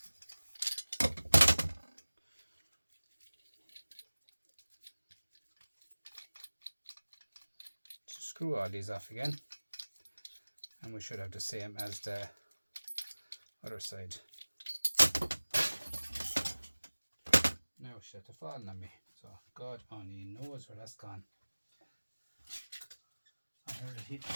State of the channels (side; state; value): both; inverted; correlation -1.00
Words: So screw all these off again, and we should have the same as the other side. Now she had to fall on me, so God only knows where that's gone. I heard it hit